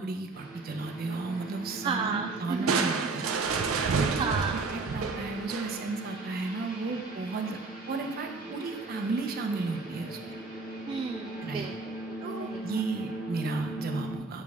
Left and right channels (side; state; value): left; quieter; 3.7 dB